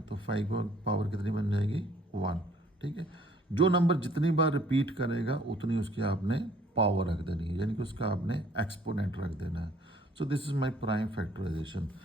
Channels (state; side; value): normal; both; correlation 0.59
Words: तो 5 की पावर कितनी बन जाएगी 1। ठीक है, जो नंबर जितनी बार रिपीट करेगा उतनी उसकी आपने पावर रख देनी है, यानी कि उसका आपने एक्सपोनेंट रख देना है। So this is my prime factorization.